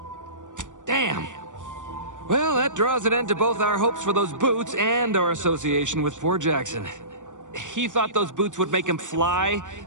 Damn. Well, that draws an end to both our hopes for those boots and our association with poor Jackson. He thought those boots would make him fly,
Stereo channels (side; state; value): left; late; 0.86 ms